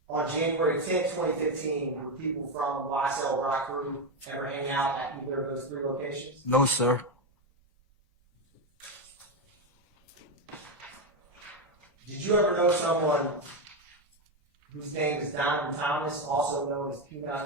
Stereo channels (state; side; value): normal; both; correlation 0.09